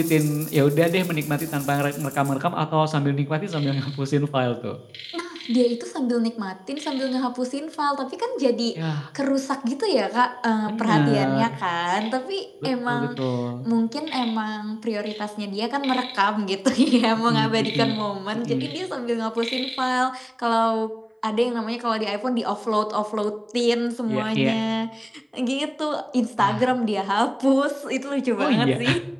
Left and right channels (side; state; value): both; identical; correlation 1.00